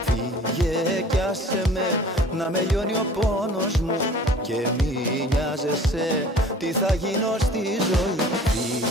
Φύγε κι άσε με να με λιώνει ο πόνος μου. Και μη νοιάζεσαι τι θα γίνω στη ζωή.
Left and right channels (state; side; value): normal; both; correlation 0.47